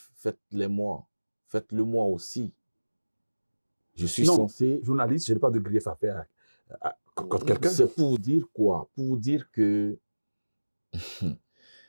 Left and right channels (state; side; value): inverted; both; correlation -1.00